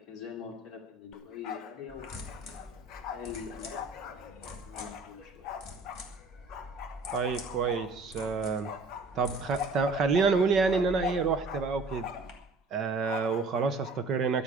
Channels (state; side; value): quieter; left; 3.4 dB